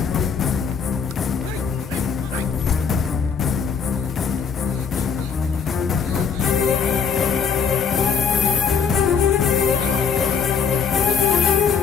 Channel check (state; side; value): quieter; right; 6.2 dB